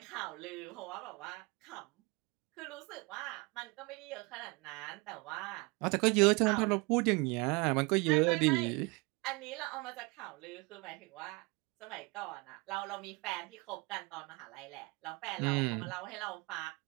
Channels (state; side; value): quieter; left; 27.4 dB